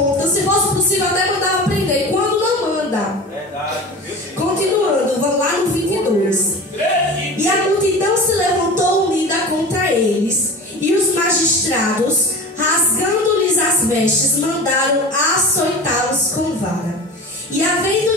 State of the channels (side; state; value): both; normal; correlation 0.35